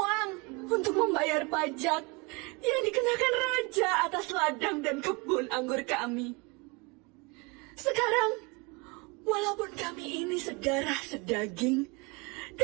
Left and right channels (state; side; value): quieter; left; 28.2 dB